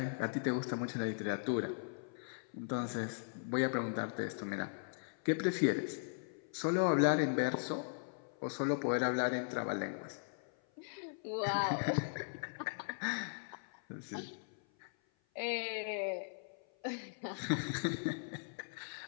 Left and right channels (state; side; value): silent; right; 52 dB below the other